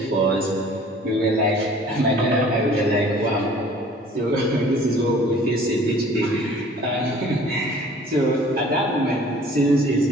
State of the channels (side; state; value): both; normal; correlation 0.51